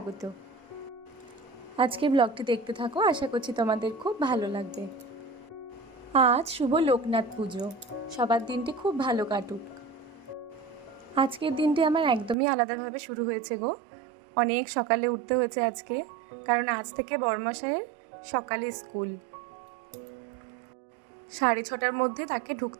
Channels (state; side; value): drops out; left; at 12.4 s